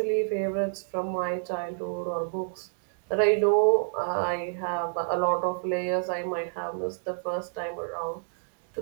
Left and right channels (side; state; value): left; silent; digital silence